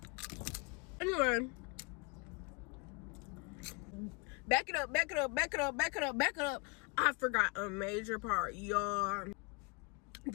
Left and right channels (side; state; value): right; quieter; 31.1 dB